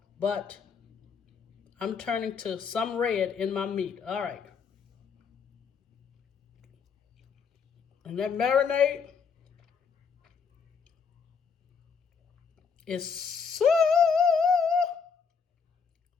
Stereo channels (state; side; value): quieter; right; 6.0 dB